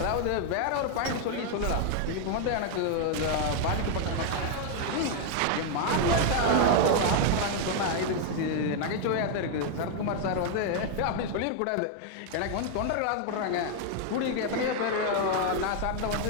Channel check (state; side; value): different; both; correlation 0.00